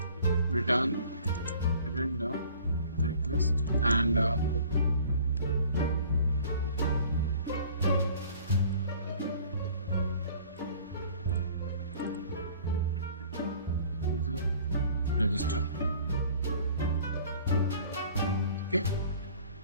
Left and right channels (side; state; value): both; inverted; correlation -0.51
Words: return the request, and user register. Okay,